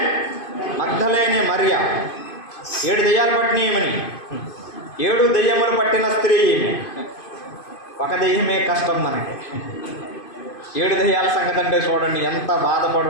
మగ్దలేనే మరియ. 7 దెయ్యాలు పట్టినయమని, 7 దెయ్యములు పట్టిన స్త్రీ ఈమె. ఒక దెయ్యమే కష్టం మనకి. 7 దెయ్యాల సంగతి అంటే చూడండి ఎంత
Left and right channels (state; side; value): late; right; 2.5 ms